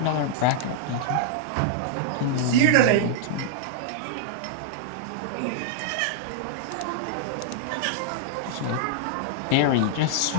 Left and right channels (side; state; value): both; different; correlation -0.01